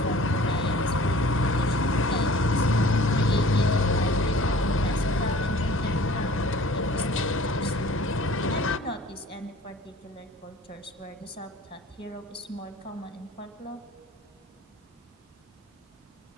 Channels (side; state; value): both; normal; correlation 0.47